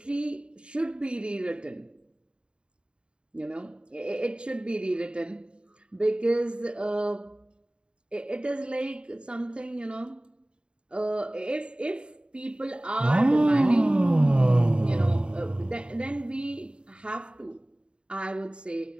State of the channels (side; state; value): left; late; 0.053 ms